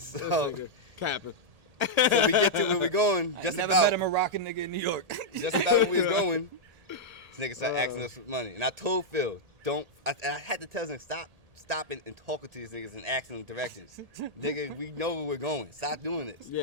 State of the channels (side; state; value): left; late; 1.8 ms